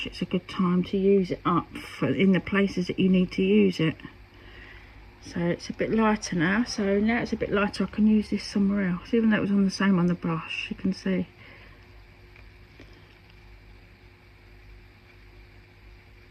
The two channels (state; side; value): identical; both; correlation 1.00